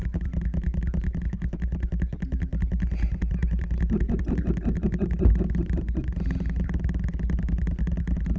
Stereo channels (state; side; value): identical; both; correlation 1.00